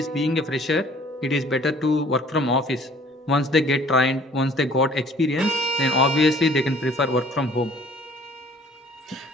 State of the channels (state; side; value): normal; both; correlation 0.54